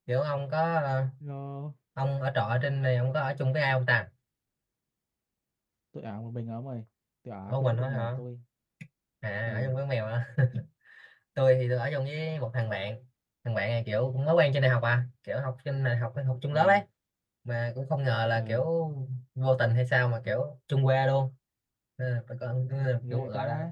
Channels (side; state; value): both; identical; correlation 1.00